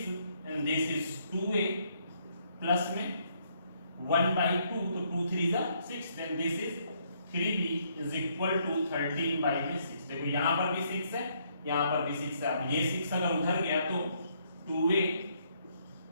and this is 2a plus में 1/2, तो 2 3 is 6, then this is 3b is equal to 13/6। देखो यहाँ पर भी 6 है, यहाँ पर भी 6 है। अब ये 6 अगर उधर गया तो 2a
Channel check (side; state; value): both; inverted; correlation -0.71